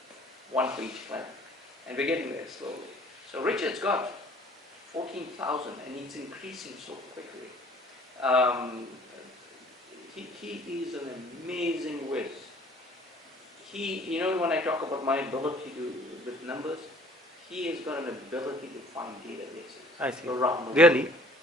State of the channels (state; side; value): normal; both; correlation 0.54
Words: 1 for each clan. And we're getting there slowly. So Richard's got 14,000 and it's increasing so quickly. He is an amazing whiz. When I talk about my ability with numbers, he has got an ability to find databases around the world. Really?